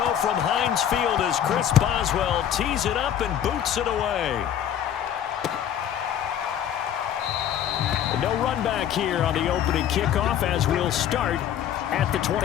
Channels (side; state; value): right; quieter; 10.0 dB